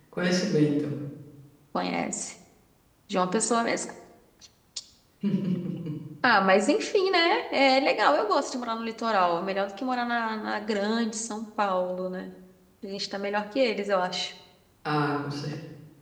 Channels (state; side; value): identical; both; correlation 1.00